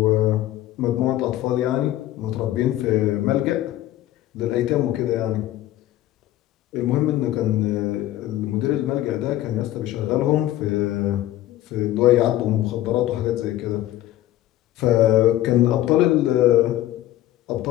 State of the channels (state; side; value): quieter; right; 14.3 dB